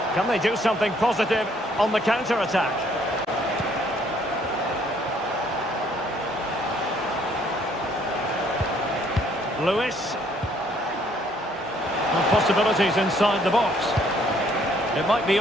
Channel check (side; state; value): both; normal; correlation 0.64